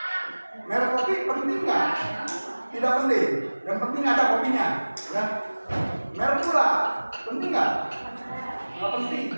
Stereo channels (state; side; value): inverted; both; correlation -1.00